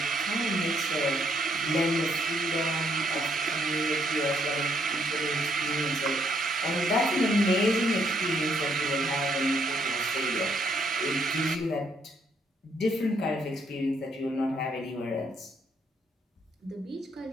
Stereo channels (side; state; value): both; normal; correlation 0.71